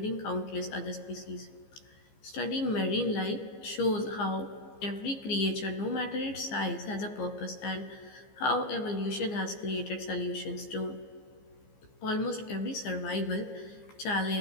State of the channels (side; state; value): right; late; 15 ms